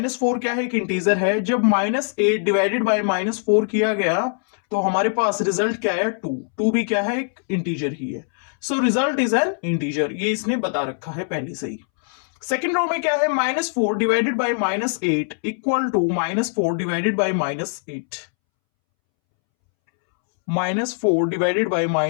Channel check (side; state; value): right; silent; 64 dB below the other